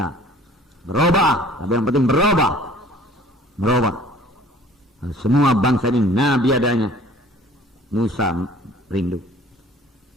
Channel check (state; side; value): normal; both; correlation 0.51